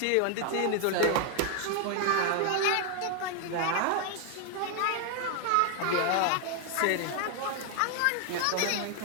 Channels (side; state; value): both; different; correlation 0.00